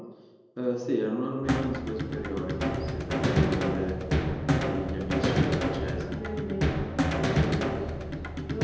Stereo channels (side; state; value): both; identical; correlation 1.00